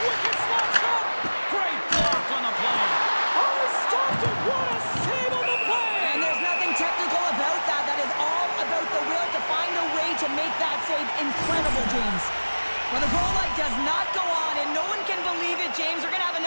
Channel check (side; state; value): both; inverted; correlation -1.00